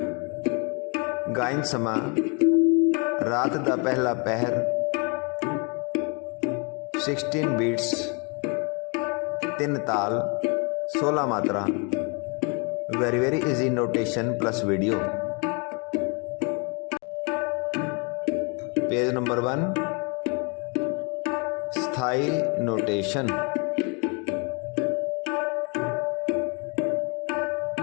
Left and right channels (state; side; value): quieter; right; 34.0 dB